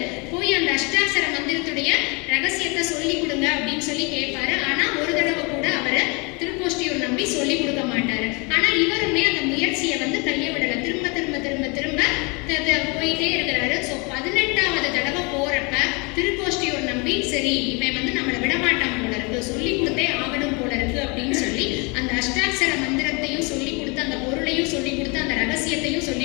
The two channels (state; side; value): quieter; right; 30.2 dB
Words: போயிட்டே இருக்கிறாரு. ஸோ 18வது தடவை போறப்ப திருக்கோஷ்டியூர் நம்பி சரி இவன் வந்து நம்மளை விடமாட்டான் போல இருக்கு, சொல்லி கொடுத்தே ஆகணும் போல இருக்கு அப்படின்னு சொல்லி அந்த அஷ்டாட்சர மந்திரத்தையும் சொல்லி கொடுத்து அந்த பொருளையும் சொல்லி கொடுத்து அந்த ரகசியத்தையும் சொல்லி